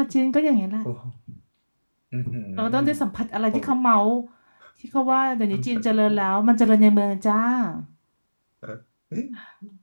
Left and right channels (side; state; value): both; inverted; correlation -1.00